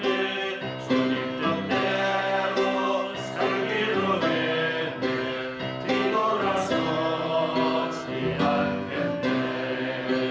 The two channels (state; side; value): identical; both; correlation 1.00